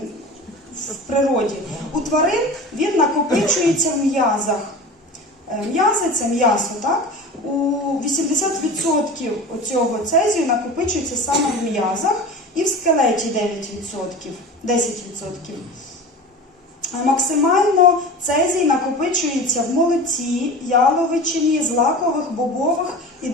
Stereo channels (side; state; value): both; normal; correlation 0.34